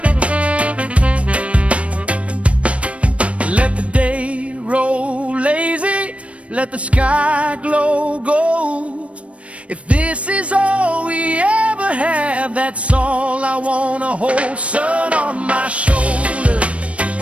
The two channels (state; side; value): late; left; 0.063 ms